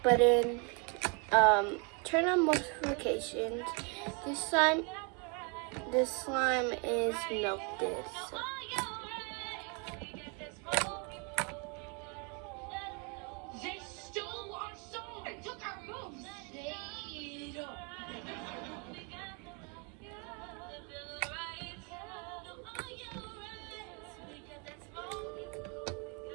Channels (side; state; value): left; quieter; 34.3 dB